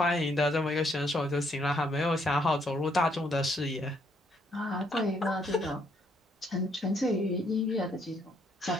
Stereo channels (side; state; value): both; normal; correlation 0.71